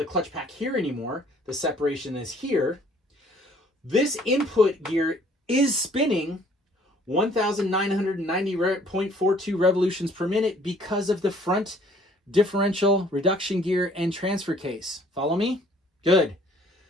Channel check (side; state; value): both; normal; correlation 0.58